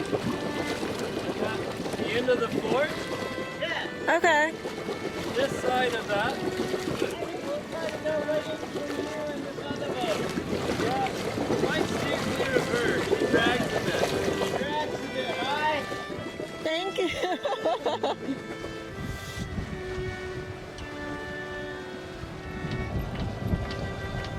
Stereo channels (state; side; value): identical; both; correlation 1.00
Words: and the end of the fort. Yeah. Okay. This side of that. I think we'll try to go right in between you and this other boat. Yeah. Might steer clear of her. She drags a bit. She drags a bit. Hi. Thank you.